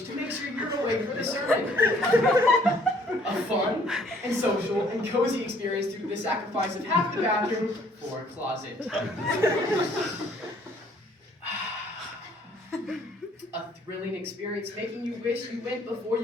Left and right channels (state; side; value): normal; both; correlation 0.61